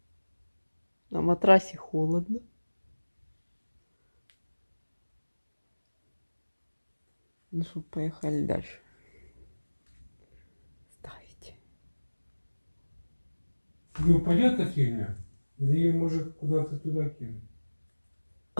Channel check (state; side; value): inverted; both; correlation -1.00